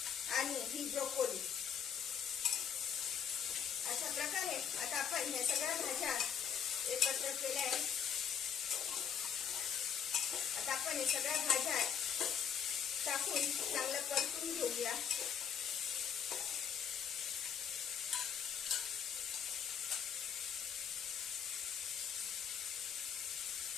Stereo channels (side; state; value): right; quieter; 7.9 dB